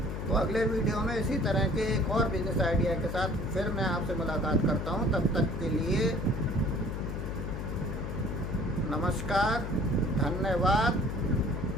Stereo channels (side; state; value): left; noise; hum, 4 dB below the sound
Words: तो अगले वीडियो में इसी तरह के एक और बिजनेस आइडिया के साथ फिर मैं आपसे मुलाकात करता हूं। तब तक के लिए नमस्कार, धन्यवाद,